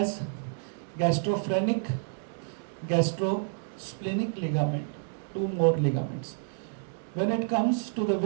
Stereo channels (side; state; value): left; silent; digital silence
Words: gastrophrenic, gastrosplenic ligament, 2 more ligaments. When it comes to the